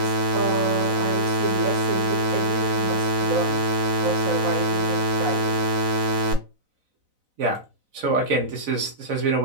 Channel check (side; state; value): left; late; 4.0 ms